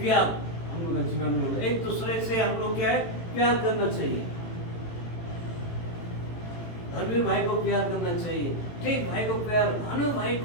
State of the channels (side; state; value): right; late; 18 ms